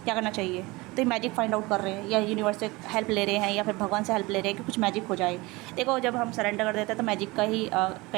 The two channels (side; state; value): left; quieter; 23.0 dB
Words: क्या करना चाहिए। तो ये मैजिक फाइंड आउट कर रहे हैं, या यूनिवर्स से हेल्प ले रहे हैं, या फिर भगवान से हेल्प ले रहे हैं कि कुछ मैजिक हो जाए। देखो, जब हम सरेंडर कर देते हैं तो मैजिक का ही